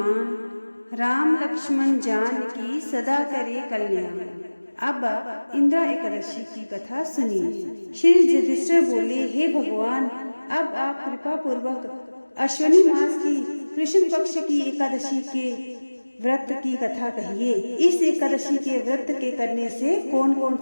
राम लक्ष्मण जान की सदा करे कल्याण। अब इंद्रा एकादशी की कथा सुनिए। श्री युधिष्ठिर बोले, हे भगवान, अब आप कृपा पूर्वक अश्विनी मास की कृष्ण पक्ष की एकादशी के व्रत की कथा कहिए। इस एकादशी के व्रत के करने से कौन कौन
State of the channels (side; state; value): both; inverted; correlation -1.00